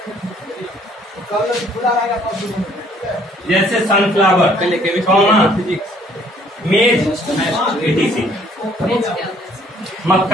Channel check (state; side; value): normal; both; correlation 0.61